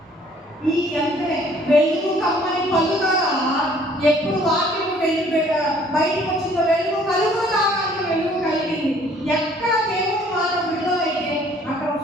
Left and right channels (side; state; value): both; normal; correlation 0.58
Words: ఈ అంటే వెలుగు కమ్మని పలుకగా, ఎప్పుడు వాక్యము బయటకు వచ్చిందో వెలుగు కలుగు కాక వెలుగు కలిగింది. ఎక్కడ దేవుని మాట విడుదలైతే అక్కడ